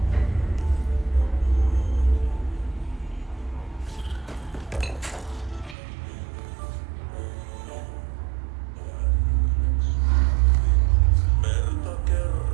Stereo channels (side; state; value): left; drops out; at 5.8 s